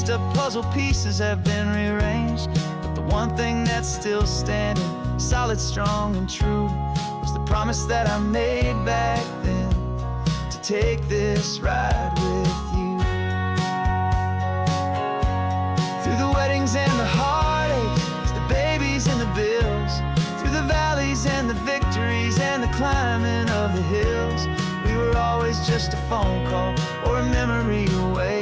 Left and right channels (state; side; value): identical; both; correlation 1.00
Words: up puzzle pieces have been rearranged. But the one thing that's still standing, solid, strong, and true, was the promise that I made back then, to take this ride with you. Through the weddings and the heartaches, the babies and the bills, through the valleys and the victories and the climbing of the hills, we were always just a phone call or a memory away,